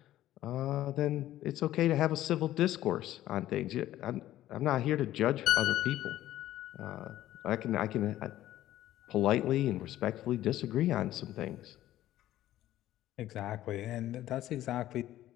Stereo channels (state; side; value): quieter; right; 13.9 dB